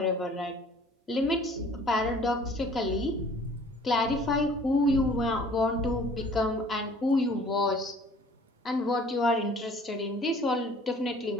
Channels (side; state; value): both; normal; correlation 0.53